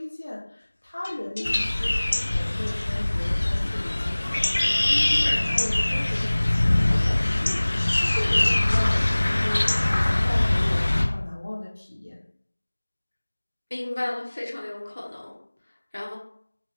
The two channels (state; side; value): inverted; both; correlation -1.00